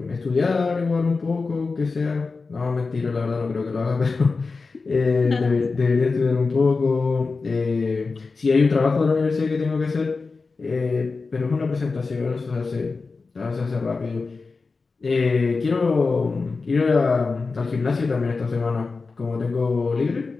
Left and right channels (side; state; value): right; quieter; 4.2 dB